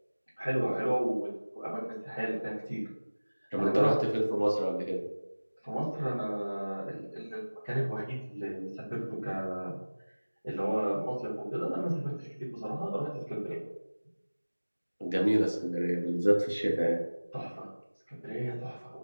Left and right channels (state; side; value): inverted; both; correlation -1.00